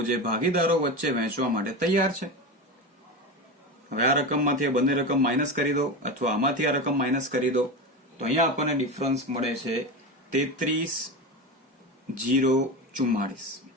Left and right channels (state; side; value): normal; both; correlation 0.22